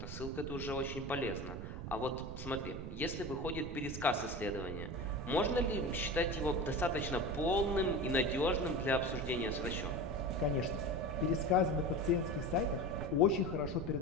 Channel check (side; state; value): right; noise; rumble, 7 dB below the sound